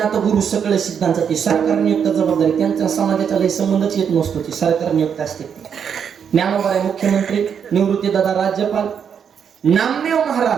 गुरु सकळ सिद्धांचा ती सरकार नियुक्त जबाबदारी, त्यांचा समाजाचा लय संबंधच येत नसतो, ती सरकार नियुक्त असते. ज्ञानोबराय मुख्यमंत्री, निवृत्तीदाता राज्यपाल. नामदेव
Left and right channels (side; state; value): left; quieter; 7.5 dB